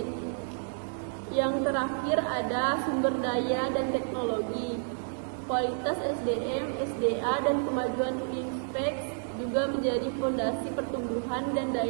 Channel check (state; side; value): silent; left; digital silence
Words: Yang terakhir ada sumber daya dan teknologi. Kualitas SDM, SDA, dan kemajuan investasi juga menjadi fondasi pertumbuhan dan